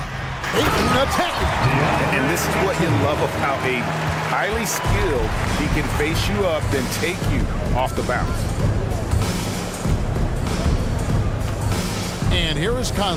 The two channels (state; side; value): identical; both; correlation 1.00